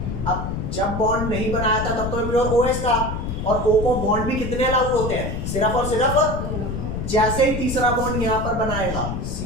अब जब बॉन्ड नहीं बनाया था तब तो प्योर OH था, और O को बॉन्ड भी कितने लागू होते हैं, सिर्फ और सिर्फ जैसे ही तीसरा बॉन्ड यहाँ पर बनाएगा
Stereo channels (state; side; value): noise; left; rumble, 4 dB below the sound